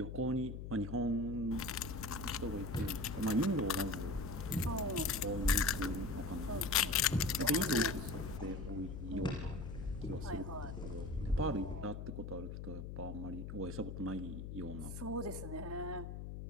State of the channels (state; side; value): noise; left; hum, 7 dB below the sound